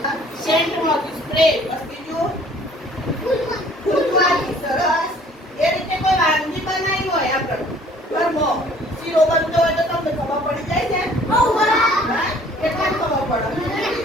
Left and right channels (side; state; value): both; normal; correlation 0.55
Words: સેન્ટમાંથી સ્પ્રે. બસ બીજું ફૂલમાંથી. સરસ. એ રીતે કોઈ વાનગી બનાવી હોય આપણે ઘરમાં શીરો બનતો હોય તો તમને ખબર પડી જાય છે? હા? કેટલા ખબર પડે?